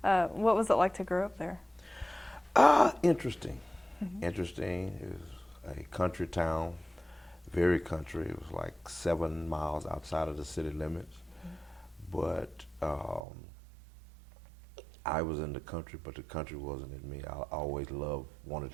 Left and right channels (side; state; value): left; drops out; at 13.2 s